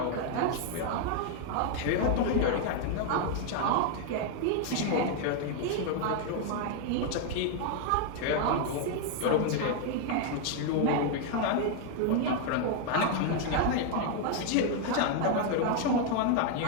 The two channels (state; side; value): different; both; correlation 0.00